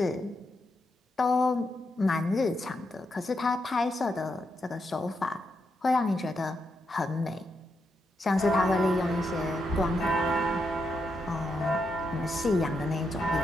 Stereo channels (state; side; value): normal; both; correlation 0.83